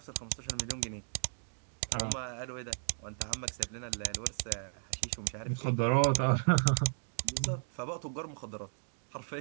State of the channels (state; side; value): silent; left; digital silence